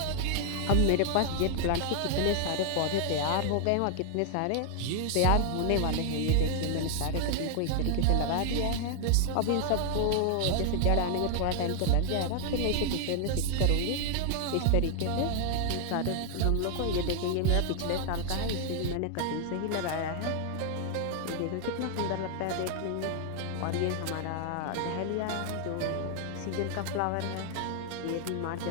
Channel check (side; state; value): both; different; correlation 0.00